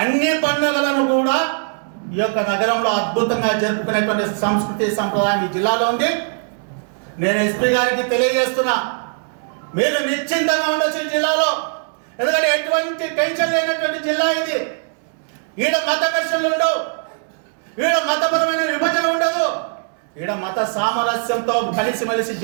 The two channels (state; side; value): silent; left; 66 dB below the other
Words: అన్ని పండుగలను కూడా ఈ యొక్క నగరంలో అద్భుతంగా జరుపుకునేటువంటి సంస్కృతి సంప్రదాయం ఈ జిల్లాలో ఉంది. నేను ఎస్పీ గారికి తెలియజేస్తున్నా, మీరు నిశ్చింతంగా ఉండొచ్చు ఈ జిల్లాలో. ఎందుకంటే ఎటువంటి టెన్షన్ లేనటువంటి జిల్లా ఇది. ఈడ మత ఘర్షణలు ఉండవు, ఈడ మతపరమైన విభజన ఉండదు, ఈడ మత సామరస్యంతో కలిసిమెలిసి